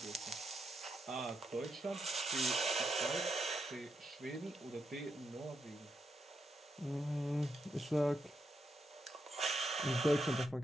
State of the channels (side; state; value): both; normal; correlation 0.82